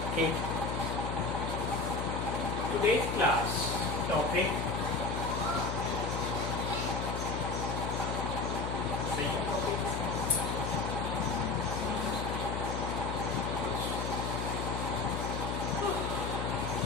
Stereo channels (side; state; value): left; noise; hum, 2 dB below the sound